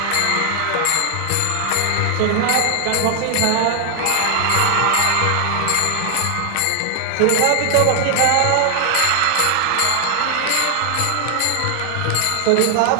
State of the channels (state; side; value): different; both; correlation 0.00